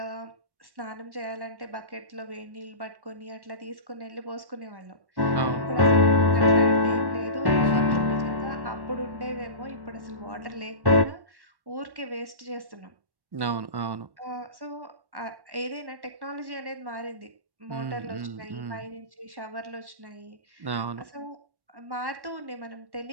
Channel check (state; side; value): late; left; 1.1 ms